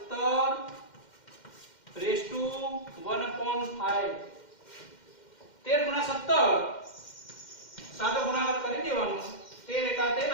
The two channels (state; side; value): late; right; 2.1 ms